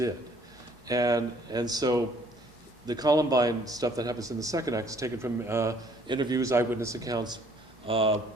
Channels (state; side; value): normal; both; correlation 0.60